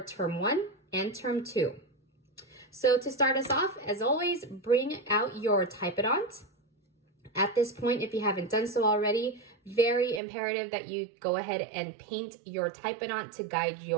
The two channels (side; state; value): left; drops out; at 10.2 s